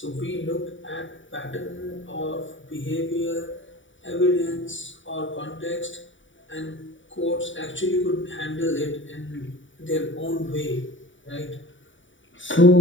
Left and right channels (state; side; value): late; right; 0.56 ms